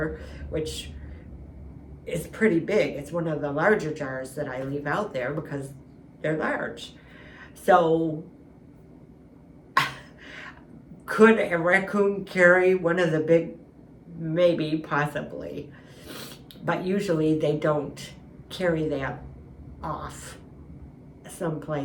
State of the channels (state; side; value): identical; both; correlation 1.00